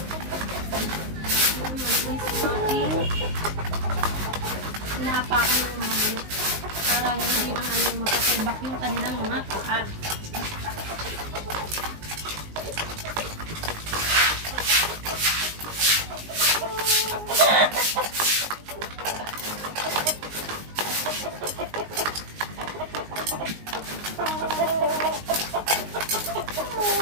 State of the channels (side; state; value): left; late; 19 ms